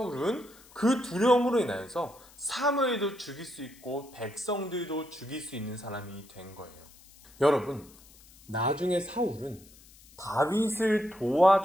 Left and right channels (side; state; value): left; noise; hiss, 24 dB below the sound